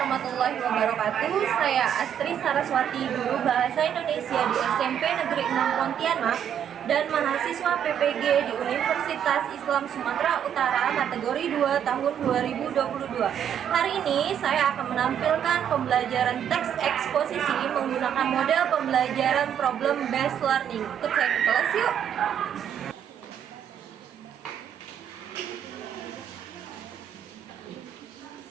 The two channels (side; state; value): left; quieter; 9.1 dB